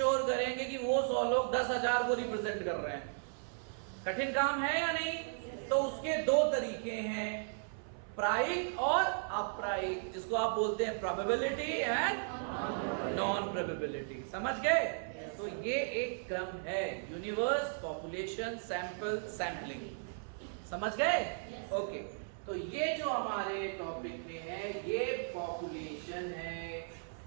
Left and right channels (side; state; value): left; silent; 54 dB below the other